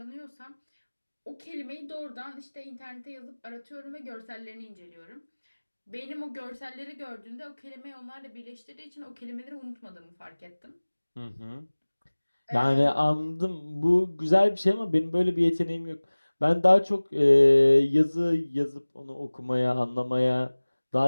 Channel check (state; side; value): inverted; both; correlation -1.00